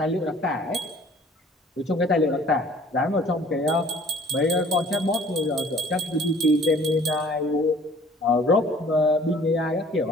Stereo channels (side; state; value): both; normal; correlation 0.53